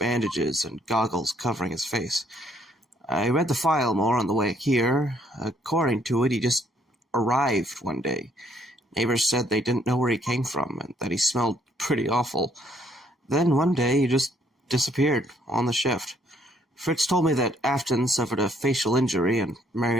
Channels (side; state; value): both; normal; correlation 0.67